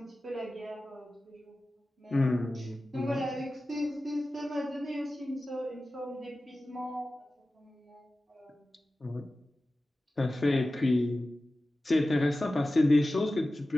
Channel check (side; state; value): both; normal; correlation 0.95